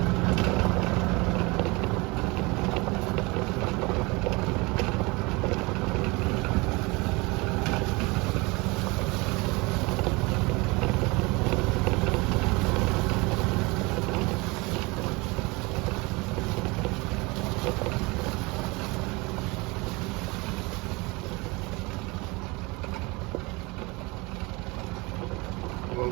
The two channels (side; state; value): left; quieter; 25.2 dB